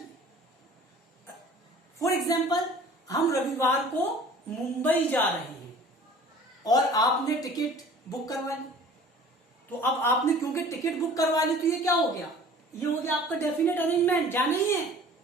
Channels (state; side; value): normal; both; correlation 0.47